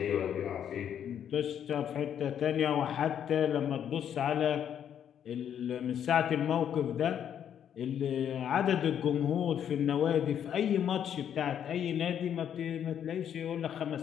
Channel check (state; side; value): quieter; right; 9.2 dB